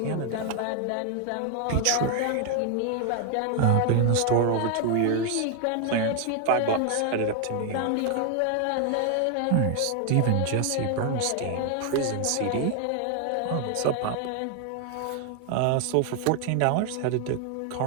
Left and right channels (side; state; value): both; different; correlation 0.00